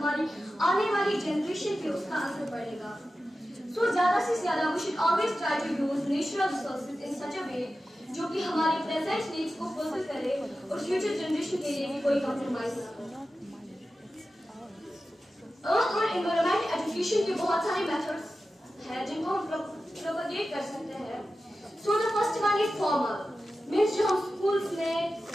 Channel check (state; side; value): normal; both; correlation 0.93